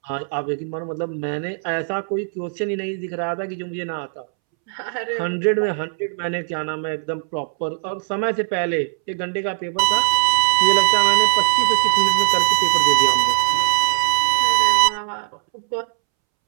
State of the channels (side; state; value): left; silent; 66 dB below the other